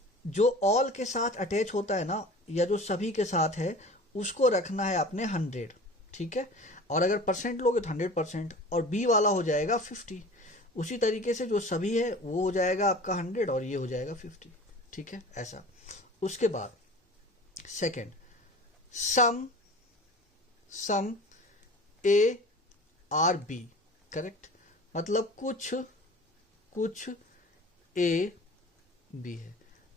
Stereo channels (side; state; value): both; normal; correlation 0.40